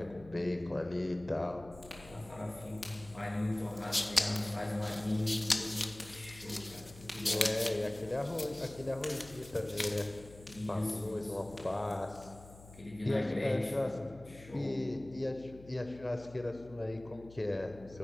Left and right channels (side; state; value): left; noise; hum, 19 dB below the sound